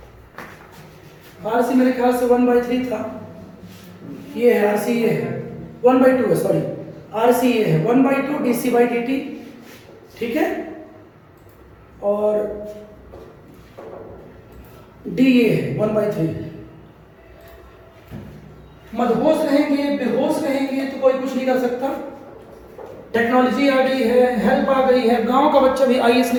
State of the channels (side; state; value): both; identical; correlation 1.00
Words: आर सी मेरे ख्याल से 1/3 था, ये है आर सी, ये है 1/2 है, सॉरी आर सी ये है 1/2 dC/dt। ठीक है, और डी ये है 1/3। मदहोश रहेंगे, बेहोश रहेंगे तो कोई कुछ नहीं कर सकता। टेक्नोलॉजी आ गई है, हेल्प आ गई है, गांव का बच्चा भी आईएएस